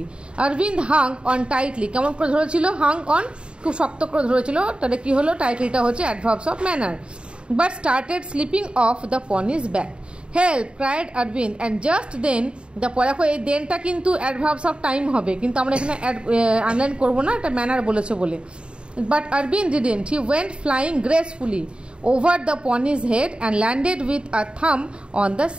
Aurobindo Hang on tightly, কেমন করে ধরেছিল? হাং অন, খুব শক্ত করে ধরেছিল। তাহলে কি হলো? টাইটলিটা হচ্ছে adverbs of manner. But started slipping off the pony's back. Help cried Arvind and just then the, দেখো এই দেনটা কিন্তু অ্যাডভার্বস অফ টাইম হবে, কিন্তু আমরা এখানে আনলাইন করবো না, এটা ম্যানার বলেছে বলে। But Arvind didn't, he went flying gracefully over the pony's head and landed with a thumb on the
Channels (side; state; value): left; late; 0.054 ms